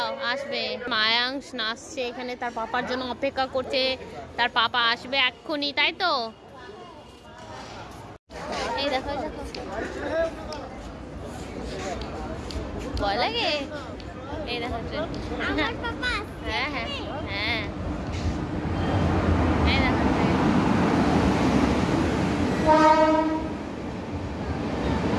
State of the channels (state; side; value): identical; both; correlation 1.00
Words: আসবে। মায়াংশ নাচছে এখানে, তার পাপার জন্য অপেক্ষা করছে। তার পাপা আসবে এক্ষুনি, তাই তো? এই দেখো দেখো, ভয় লাগে। এই দেখো, হ্যাঁ হ্যাঁ হ্যাঁ, এই দেখো